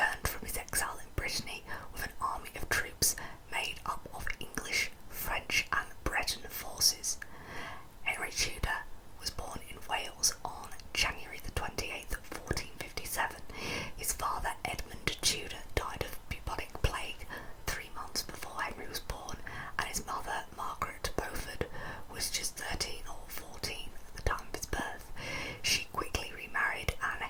from his exile in Brittany with an army of troops made up of English, French and Breton forces. Henry Tudor was born in Wales on January the 28th, 1457. His father, Edmund Tudor, died of bubonic plague 3 months before Henry was born, and his mother, Margaret Beaufort, was just 13 or 14 at the time of his birth. She quickly remarried, and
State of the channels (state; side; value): identical; both; correlation 1.00